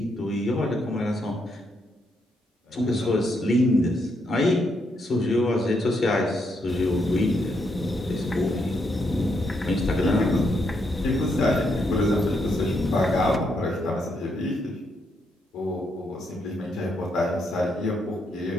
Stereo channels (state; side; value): normal; both; correlation 0.78